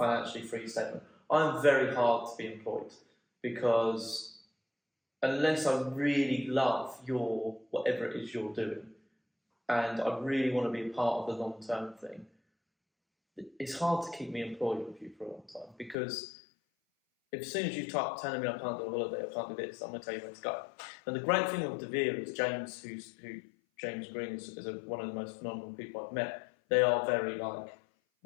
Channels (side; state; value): right; drops out; at 16.0 s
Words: free statement, I'm very hard to be employed because unless I really love whatever it is you're doing, and I really want to be a part of the long term thing, it's hard to keep me employed with you for a long time because as soon as you start telling me I can't do a holiday, I can't do this, I'm going to tell you where to go. And the great thing with deVere's is James Green is one of the most phenomenal people I've met. They are very